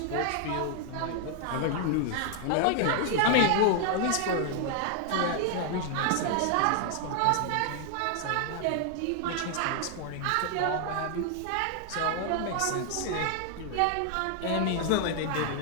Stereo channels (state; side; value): different; both; correlation 0.00